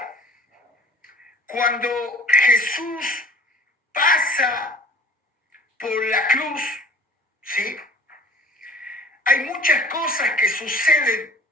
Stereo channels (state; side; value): normal; both; correlation 0.46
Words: cuando Jesús pasa por la cruz, ¿sí?, hay muchas cosas que suceden